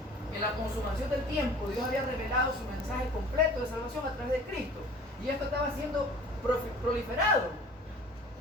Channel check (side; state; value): both; normal; correlation 0.46